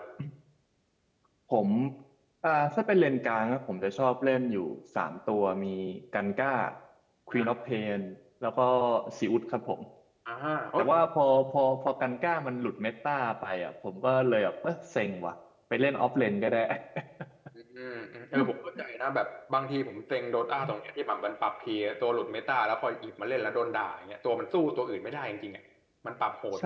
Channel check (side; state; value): both; identical; correlation 1.00